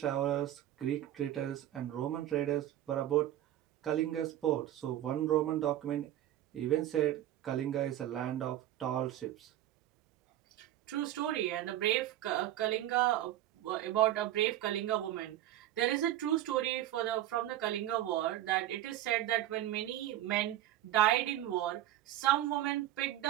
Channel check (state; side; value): quieter; left; 13.1 dB